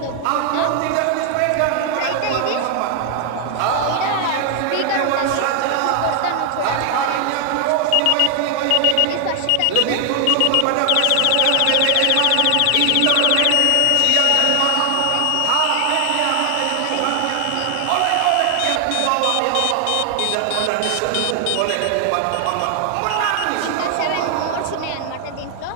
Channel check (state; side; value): different; both; correlation 0.00